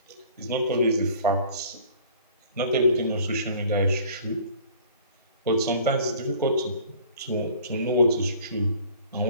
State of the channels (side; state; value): both; inverted; correlation -0.50